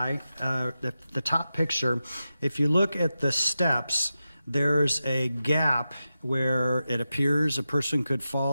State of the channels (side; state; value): both; inverted; correlation -0.92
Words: The top picture. If you look at the steps, there's a gap where it appears a person could